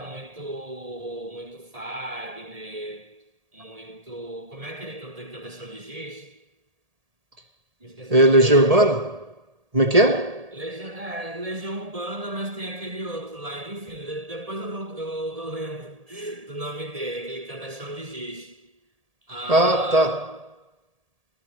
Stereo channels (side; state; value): left; late; 1.7 ms